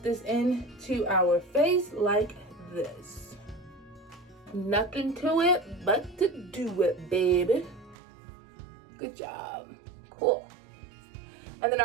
into our face like this. Nothing to it but to do it, baby. Good job. Cool. And then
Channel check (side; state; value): left; drops out; at 8.0 s